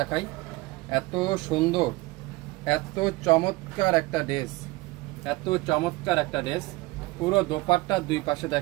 এত সুন্দর এত চমৎকার একটা ড্রেস, পুরো দোপাট্টার দুই পাশে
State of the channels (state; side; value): quieter; left; 21.5 dB